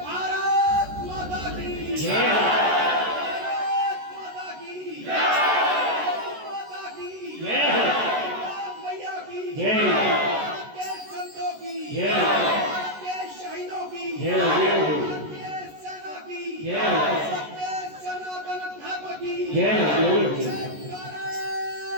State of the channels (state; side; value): late; left; 14 ms